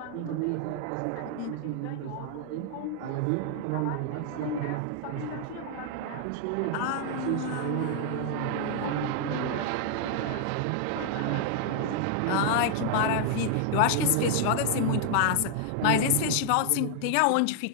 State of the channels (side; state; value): both; different; correlation 0.00